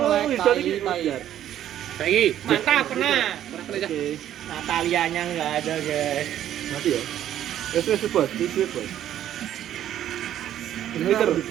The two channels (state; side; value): quieter; left; 11.4 dB